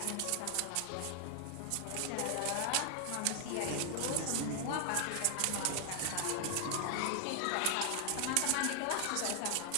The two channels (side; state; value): both; different; correlation 0.00